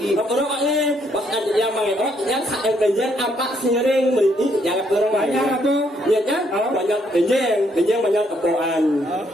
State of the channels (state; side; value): normal; both; correlation 0.71